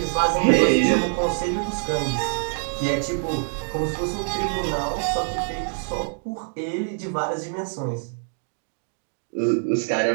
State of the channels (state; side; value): silent; left; digital silence